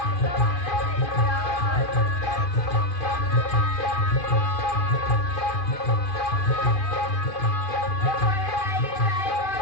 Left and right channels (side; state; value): right; late; 2.5 ms